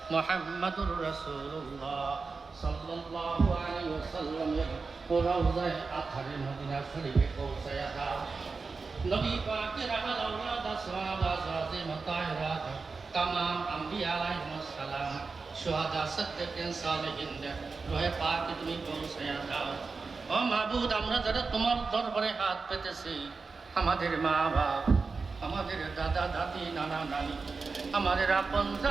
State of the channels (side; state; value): left; quieter; 4.4 dB